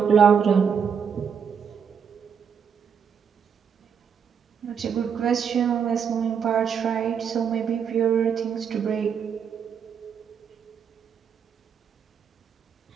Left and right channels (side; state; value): left; quieter; 7.1 dB